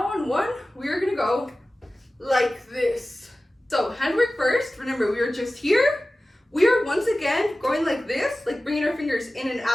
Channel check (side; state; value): both; normal; correlation 0.96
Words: on 1, we're gonna go like this. So handwork first. Remember, we were just here. We are once again going like this, like bringing our fingers in and